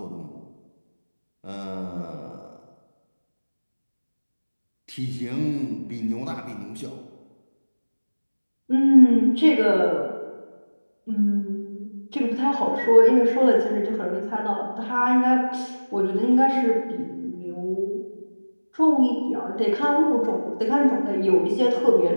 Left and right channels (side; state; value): both; inverted; correlation -1.00